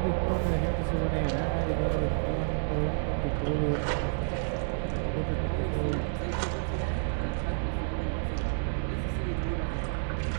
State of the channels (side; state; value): left; silent; digital silence